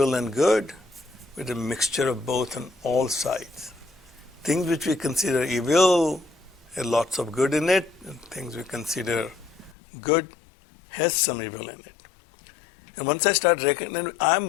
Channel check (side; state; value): right; drops out; at 9.8 s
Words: and good, but a mixture of both on all sides. Things which we consider evil have lots of good in it, and things we consider good has some evil in it. And once I start recognizing, I'm